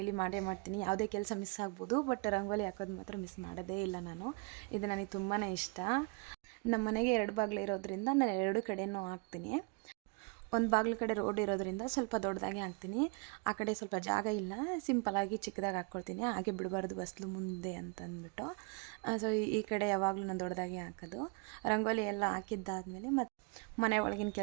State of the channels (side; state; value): left; quieter; 32.1 dB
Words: ಮಾಡ್ತೀನಿ. ಯಾವುದೇ ಕೆಲಸ ಮಿಸ್ ಆಗ್ಬೋದು, ಬಟ್ ರಂಗೋಲಿ ಹಾಕೋದು ಮಾತ್ರ ಮಿಸ್ ಮಾಡೋದೇ ಇಲ್ಲ ನಾನು. ಇದು ನನಗೆ ತುಂಬಾ ಇಷ್ಟ. ನಮ್ಮ ಮನೆಗೆ 2 ಬಾಗಿಲು ಇರೋದ್ರಿಂದ ನಾನು 2 ಕಡೆಯೂ ಹಾಕ್ತೀನಿ. ಒಂದು ಬಾಗಿಲು ಕಡೆ ರೋಡ್ ಇರೋದ್ರಿಂದ ಸ್ವಲ್ಪ ದೊಡ್ಡದಾಗೆ ಹಾಕ್ತೀನಿ. ಆ ಕಡೆ ಸ್ವಲ್ಪ ಜಾಗ ಇಲ್ಲ, ಸಿಂಪಲಾಗಿ ಚಿಕ್ಕದಾಗಿ ಹಾಕ್ಕೊಳ್ತೀನಿ. ಹಾಗೆ ಬಿಡಬಾರ್ದು ಬಸ್ಲು ಮುಂದೆ ಅಂತಂದ್ಬಿಟ್ಟು. ಸೊ ಈ ಕಡೆ ಯಾವಾಗಲೂ ನಾನು ದೊಡ್ಡದಾಗೆ ಹಾಕೋದು. ರಂಗೋಲಿ ಎಲ್ಲ ಹಾಕಿದ್ದಾದಮೇಲೆ ಮತ್ತು ಮನೆ ಒಳಗಿನ